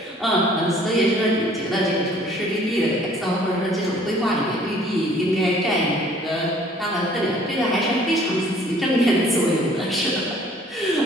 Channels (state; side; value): normal; both; correlation 0.56